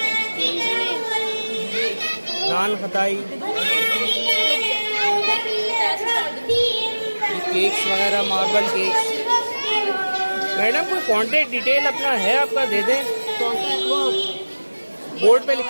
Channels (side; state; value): both; inverted; correlation -1.00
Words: नान खताई, केक्स वगैरह, मार्बल केक्स। मैडम कोई कांटेक्ट डिटेल अपना है आपका, दे दें। बोर्ड पे